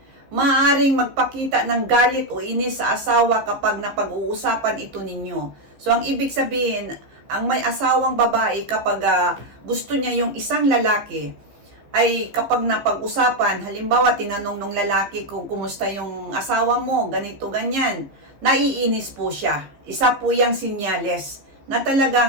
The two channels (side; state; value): left; late; 14 ms